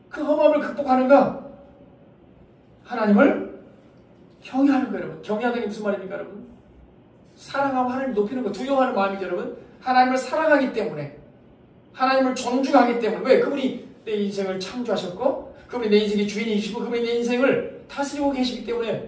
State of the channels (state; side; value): identical; both; correlation 1.00